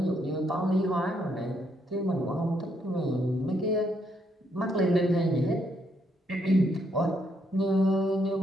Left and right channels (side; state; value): both; normal; correlation 0.74